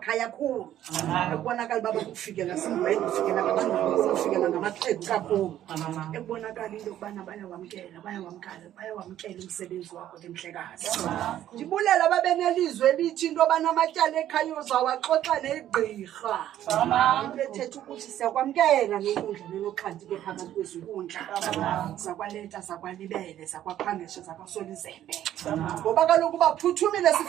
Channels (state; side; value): quieter; left; 12.0 dB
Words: khulu ekubonakala baba kufikela singwena ufikela abantu ufikela ngamaxhegu kakhulu ekubonakala into yokubana bayawamkela umsebenzi wakho ke mhlekazi ndibulela babenelizwe elithi into banamatyala ekhaya uzawaxoxa negqirha ethetha ukuthi siyakwamkela nenkundla nenoxhanti ke phakathi kwezinkundla zakwaLeta zakwalibele zakwaphangeshe zakwaSolizembe ngoba kaloku baphuthumile